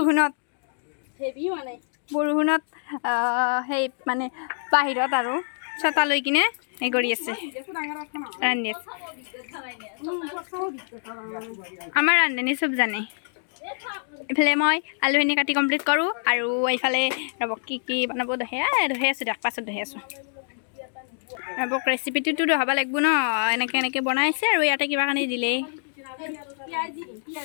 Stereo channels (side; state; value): right; silent; digital silence